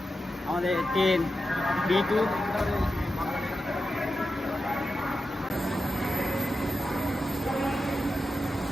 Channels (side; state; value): both; normal; correlation 0.90